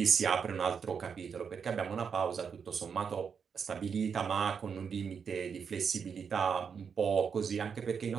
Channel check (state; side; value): quieter; left; 6.5 dB